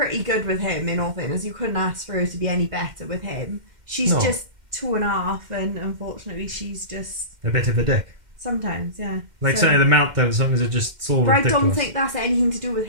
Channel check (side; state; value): left; late; 2.1 ms